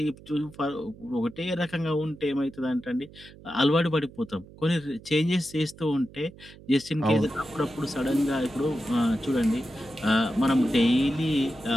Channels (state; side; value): noise; right; hum, 20 dB below the sound